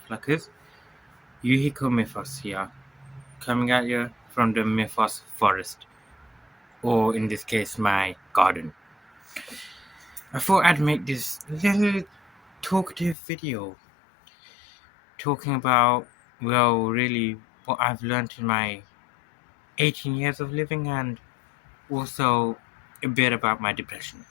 fluckers. Yuhiko here, coming at you from the Mythos forest, or in this case, my garden. I thought I'd make this little talkative video talking about, well, really what I've learned in my 18 years of living and also a bit about my depression.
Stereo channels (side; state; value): right; drops out; at 13.2 s